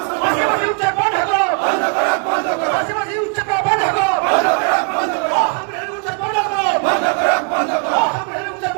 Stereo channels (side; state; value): left; quieter; 38.2 dB